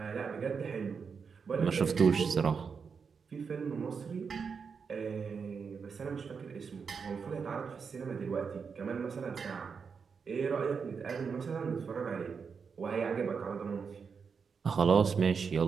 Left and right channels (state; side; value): quieter; left; 5.8 dB